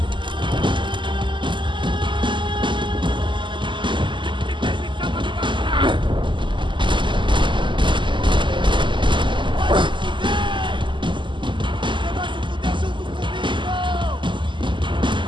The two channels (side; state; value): left; late; 0.24 ms